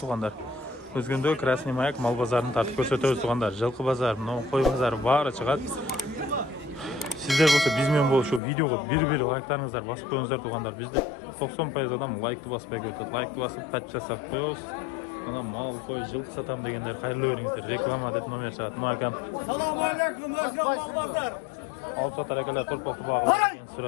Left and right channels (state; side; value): drops out; right; at 8.4 s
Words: Özgöndө Krasный Mаяк mal bazarini tartib ko'rsatamiz tug'andar. Жылқы bazar, qo'y bazari bari chiqadi. Sizler bo'lsa bizmen bo'lib shu videoga bir like'laringizni bosib qo'yingizlar tug'andar. Bizda 90% odam like'ni bosmay ko'radi. Like'ni bosib подписаться qilib qo'yamiz. Ana mal qo'y жылқы satam deganlar xayrli o'ringizlar. Reklama deb nomer chiqadi. No akam. Assalomu alaykum Özgön mal bazar. Olib sotar akalar to'rpoqni bog'i.